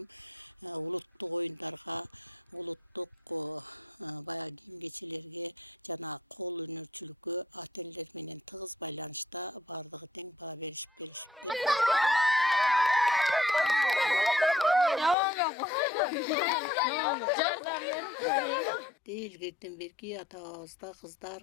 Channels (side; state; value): right; drops out; at 15.2 s